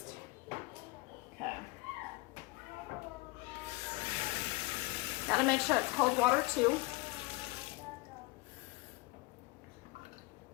Okay. Gotta make sure it's cold water too.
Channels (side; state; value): right; quieter; 22.2 dB